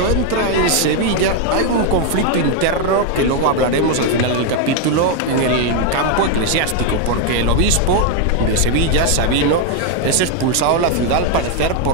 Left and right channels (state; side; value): different; both; correlation 0.01